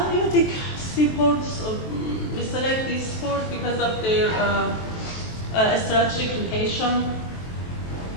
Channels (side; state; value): right; late; 23 ms